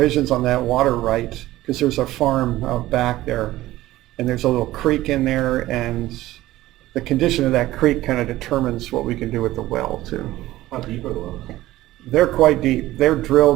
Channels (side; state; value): left; quieter; 16.1 dB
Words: on that water right, because there's a farm out back there, and there's a little creek in there, and the condition of that creek kind of determines what we can do with the well, too. How deep are the wells? They're quite deep. They're